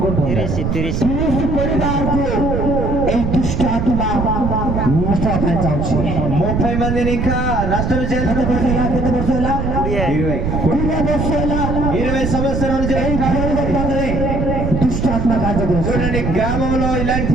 30 మందిని ఇంకా నష్టం చేయాలనుకుంటున్నారు. 20 సంవత్సరాలు చూడండి, గ్రామంలో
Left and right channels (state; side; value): noise; right; rumble, 1 dB below the sound